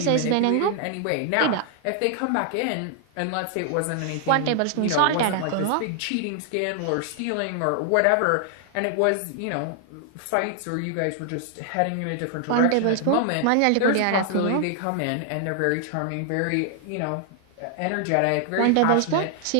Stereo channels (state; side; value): different; both; correlation 0.00